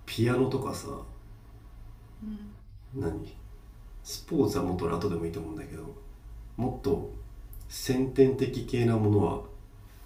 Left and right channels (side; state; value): both; identical; correlation 1.00